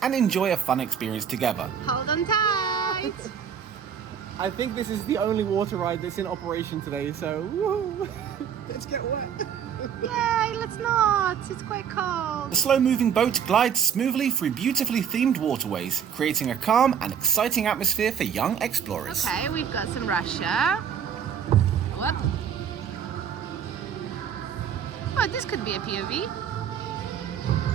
and enjoy a fun experience together. Hold on tight! I think this is the only water ride that's in operation today, so woo! Let's get wet. Yay, let's not! It's quite cold. The slow-moving boat glides smoothly through beautifully themed waterways, creating a calm and exciting atmosphere for young explorers. Okay, we've got some Russia. What? Oh, this could be a POV.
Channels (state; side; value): quieter; left; 8.0 dB